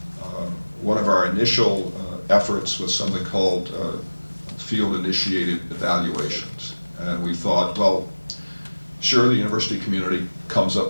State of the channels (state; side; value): inverted; both; correlation -1.00